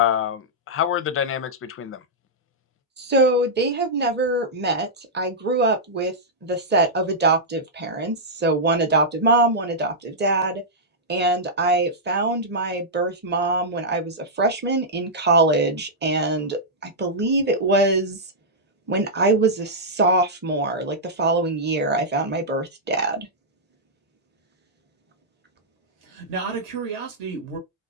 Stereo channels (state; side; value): normal; both; correlation -0.10